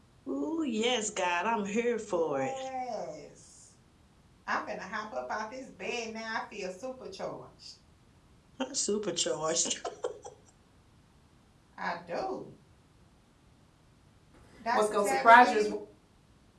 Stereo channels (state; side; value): identical; both; correlation 1.00